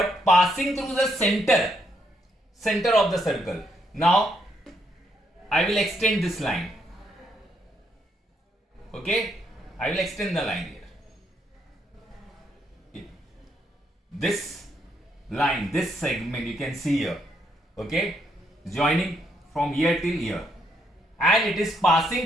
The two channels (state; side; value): normal; both; correlation 0.75